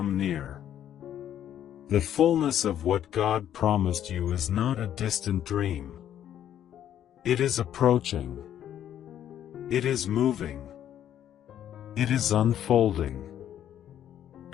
near. The fullness of what God promised you is not a distant dream. It is approaching. It is moving. It is unfolding.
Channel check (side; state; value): right; quieter; 10.6 dB